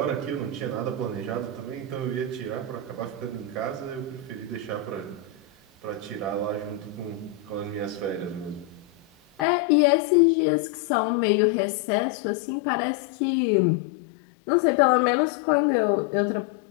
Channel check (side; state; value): right; drops out; at 9.5 s